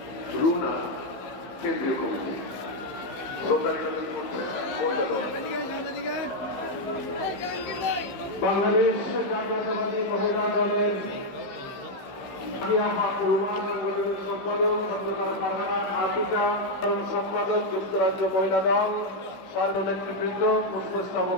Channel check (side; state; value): right; late; 15 ms